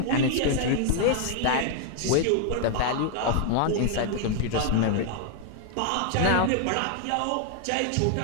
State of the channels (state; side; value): different; both; correlation 0.00